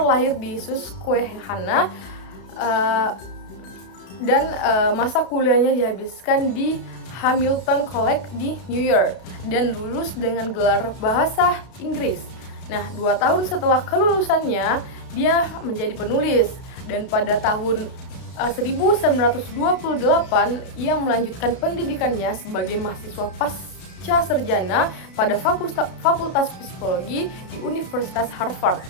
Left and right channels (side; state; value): right; late; 32 ms